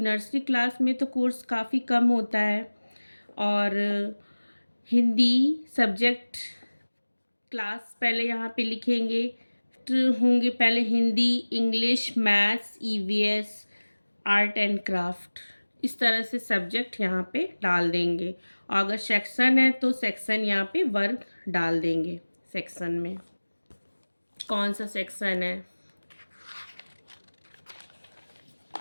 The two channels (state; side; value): inverted; both; correlation -1.00